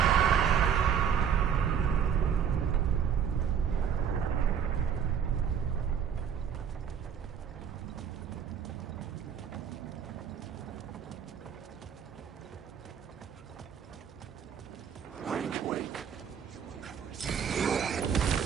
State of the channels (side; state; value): left; quieter; 7.9 dB